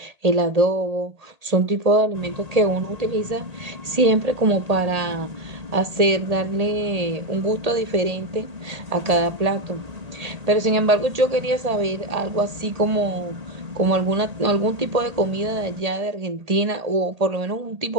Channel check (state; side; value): late; left; 1.8 ms